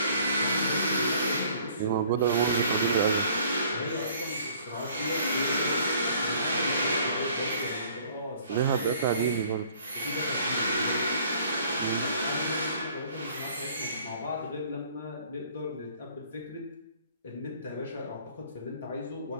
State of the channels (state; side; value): inverted; both; correlation -0.56